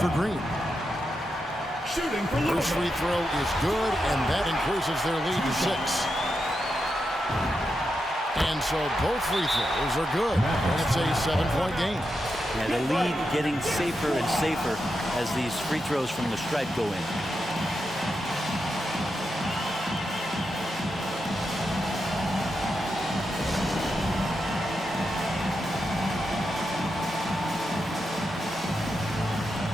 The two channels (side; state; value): both; normal; correlation 0.86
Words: for Green. Shooting for Louisville. First free throw is good, and that increases their lead to 6. And so both free throws are good. And it's a 7-point game. And the lead getting safer and safer as these free throws from the stripe go in.